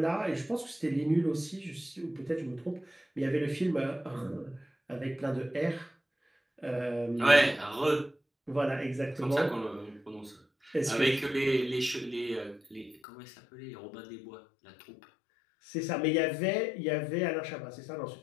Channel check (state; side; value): drops out; right; at 13.0 s